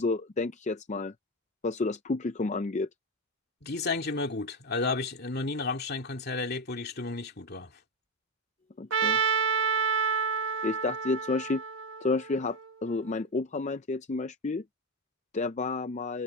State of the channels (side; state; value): both; normal; correlation 0.15